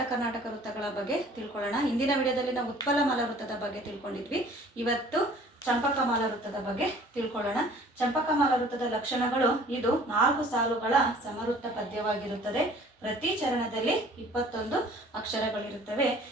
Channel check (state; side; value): normal; both; correlation 0.51